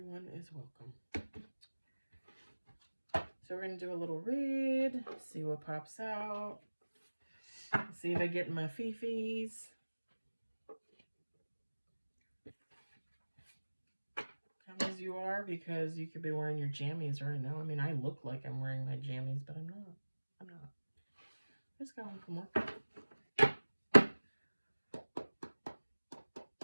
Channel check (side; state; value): both; inverted; correlation -1.00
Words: is welcome. So we're going to do a little read, see what pops out, see if I get my fifis. Come as you are, because you could be wearing your jammies right now. I mean, I look like I'm wearing my jammies, but I'm not. I just got home from work.